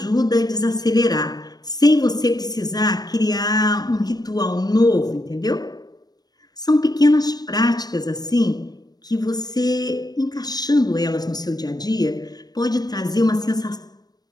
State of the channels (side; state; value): right; late; 0.19 ms